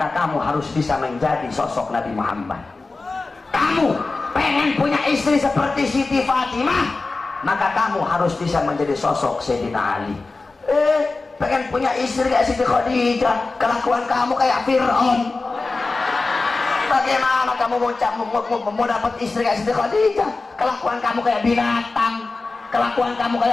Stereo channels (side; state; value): right; quieter; 3.6 dB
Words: kamu harus bisa menjadi sosok Nabi Muhammad. Kamu pengen punya istri seperti Siti Fatimah, maka kamu harus bisa menjadi sosok Sayyidina Ali. Pengen punya istri kayak Siti Khadijah, kelakuan kamu kayak Fir'aun. Bagaimana kamu mau dapat istri kayak Siti Khadijah? Kelakuan kamu kayak binatang, kelakuan kamu